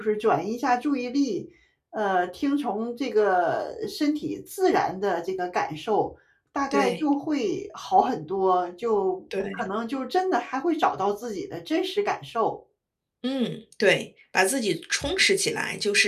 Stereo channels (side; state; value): both; identical; correlation 1.00